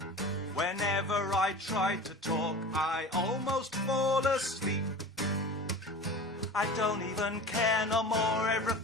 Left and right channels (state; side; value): normal; both; correlation 0.36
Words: Whenever I try to talk, I almost fall asleep. I don't even care no more,